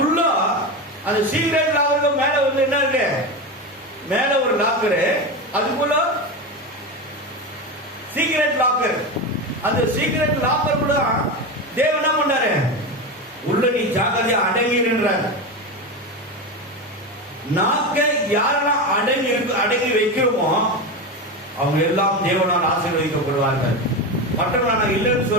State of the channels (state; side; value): normal; both; correlation 0.19